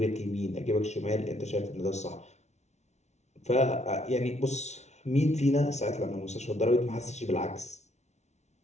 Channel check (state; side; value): late; right; 0.32 ms